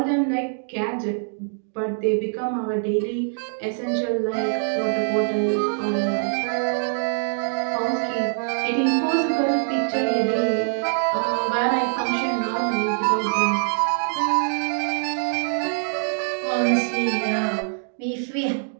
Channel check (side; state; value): left; silent; digital silence